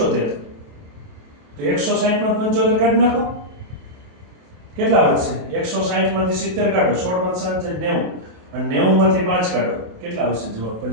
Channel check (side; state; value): left; late; 27 ms